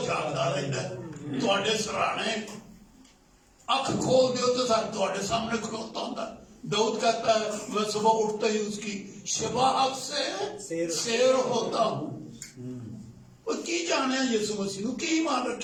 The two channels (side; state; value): both; identical; correlation 1.00